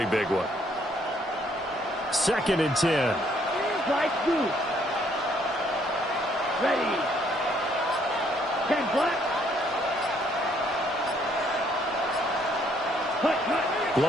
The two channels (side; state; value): both; normal; correlation 0.67